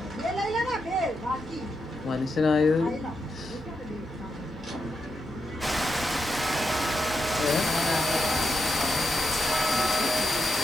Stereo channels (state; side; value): normal; both; correlation 0.83